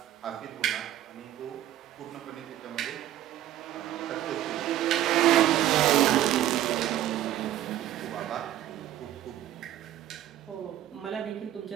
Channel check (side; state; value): left; quieter; 12.6 dB